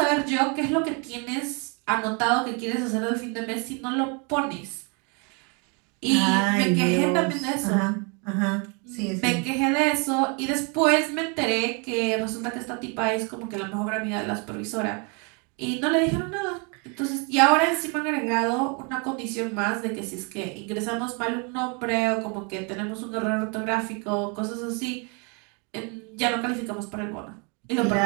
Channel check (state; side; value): quieter; left; 33.9 dB